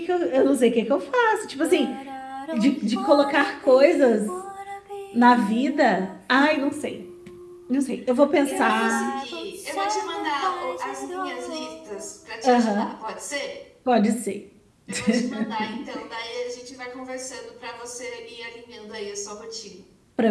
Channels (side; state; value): both; identical; correlation 1.00